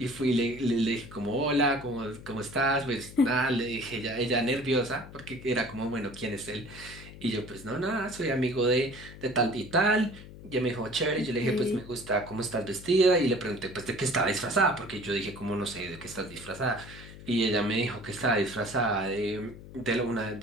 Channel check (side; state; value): left; noise; hum, 16 dB below the sound